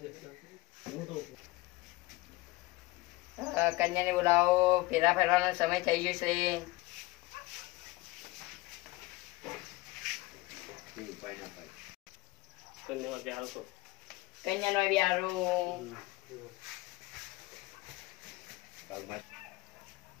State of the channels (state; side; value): quieter; right; 21.5 dB